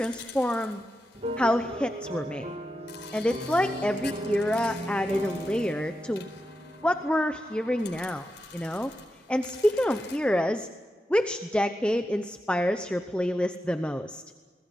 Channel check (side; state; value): both; normal; correlation 0.88